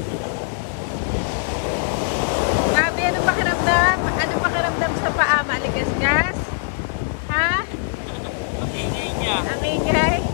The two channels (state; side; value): silent; right; 65 dB below the other